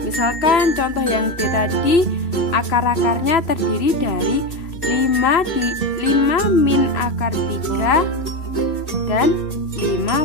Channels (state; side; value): late; right; 2.7 ms